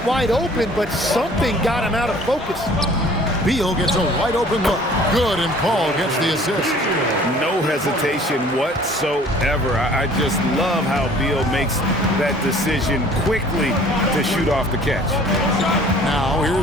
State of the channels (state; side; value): normal; both; correlation 0.52